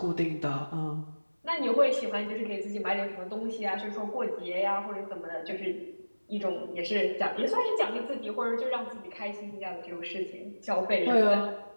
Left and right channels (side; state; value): both; inverted; correlation -1.00